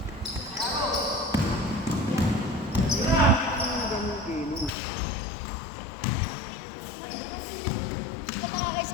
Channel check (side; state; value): right; drops out; at 4.7 s